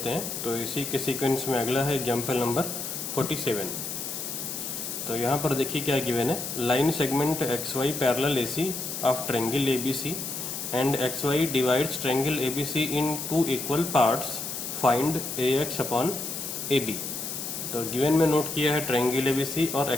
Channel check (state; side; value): noise; left; hiss, 5 dB below the sound